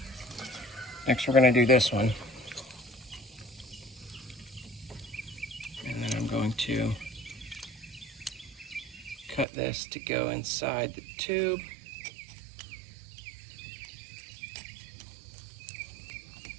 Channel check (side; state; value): left; drops out; at 9.5 s